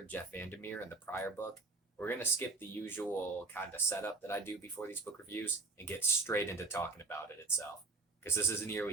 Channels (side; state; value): left; quieter; 3.6 dB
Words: Jeff Vandermeer in the prior book, we're going to skip the usual kind of setup that I do before these book reviews and get straight into talking about it itself, because this is